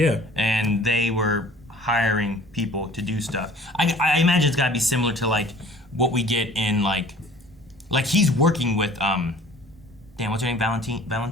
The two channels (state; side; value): normal; both; correlation 0.49